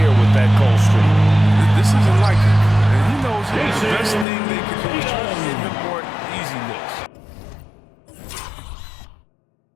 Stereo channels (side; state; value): right; drops out; at 4.2 s